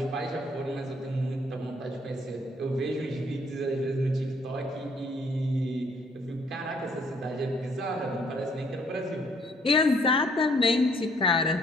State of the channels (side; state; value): both; normal; correlation 0.64